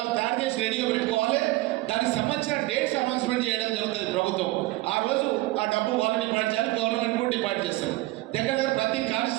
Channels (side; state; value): left; quieter; 19.5 dB